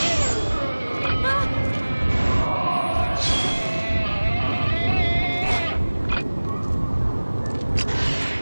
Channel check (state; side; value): inverted; both; correlation -1.00